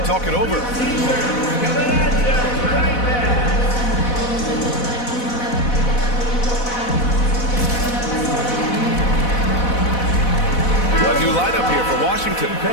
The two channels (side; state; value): right; late; 4.1 ms